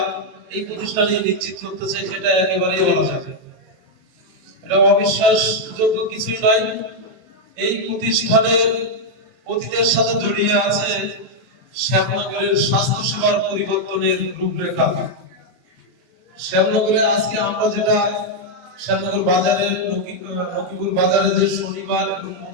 এই প্রতিষ্ঠানে নিশ্চিত করতেছে, সেটা একেবারেই বলা যায়। এটা অবিশ্বাসযোগ্য কিছুই নয়। এই প্রতিষ্ঠানের অতীতের সাথে জড়িয়ে আছে শ্যামনগরের স্বাস্থ্যসেবার পরিবর্তনের রূপরেখা। শ্যামনগরে আজকে আমরা যেটা শ্যামনগর বাজারে নকিপুর বাজারে যে শনিবার এবং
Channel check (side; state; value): left; late; 23 ms